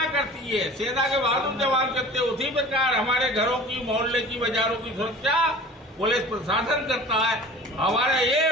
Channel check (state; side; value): normal; both; correlation 0.42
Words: करती है, सेना के बहादुर जवान करते हैं, उसी प्रकार हमारे घरों की, मोहल्ले की, बाजारों की सुरक्षा पुलिस प्रशासन करता है। हमारा